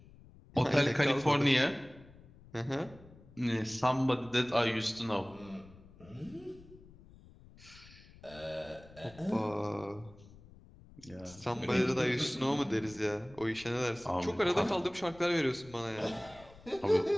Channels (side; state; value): left; noise; rumble, 22 dB below the sound